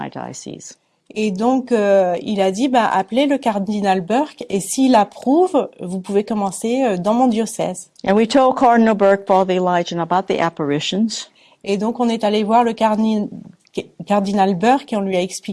diocese. Et donc, il a dit, appelez le cardinal Burke, et s'il approuve, vous pouvez commencer dans mon diocèse. And we told Cardinal Burke, Father Elijah, about the apparitions. Et donc, on est allé voir le cardinal Burke, et on lui a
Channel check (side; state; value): both; identical; correlation 1.00